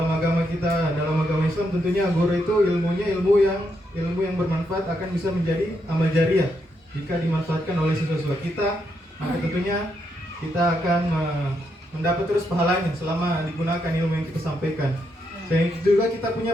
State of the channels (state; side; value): normal; both; correlation 0.80